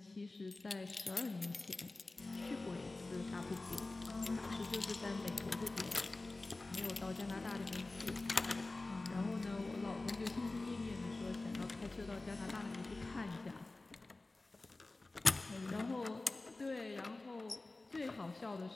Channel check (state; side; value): quieter; right; 3.1 dB